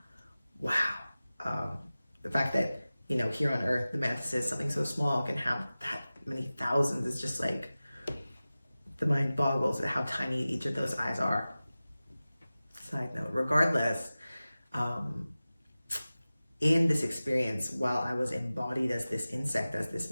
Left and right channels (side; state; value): both; inverted; correlation -0.97